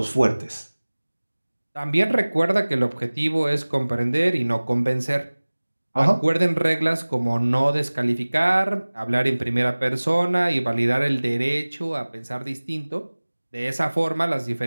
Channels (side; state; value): both; inverted; correlation -1.00